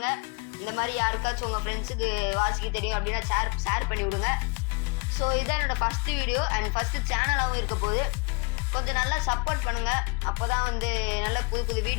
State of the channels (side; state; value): right; quieter; 29.8 dB